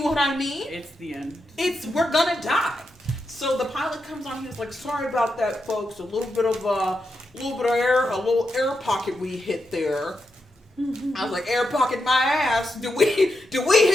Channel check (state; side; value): normal; both; correlation 0.86